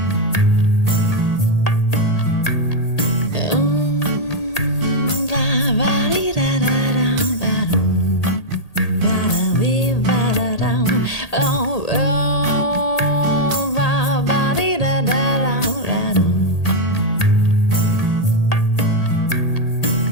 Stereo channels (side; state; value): right; late; 1.8 ms